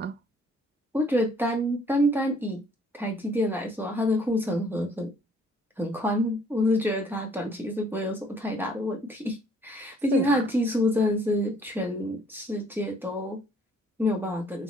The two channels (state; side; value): normal; both; correlation 0.61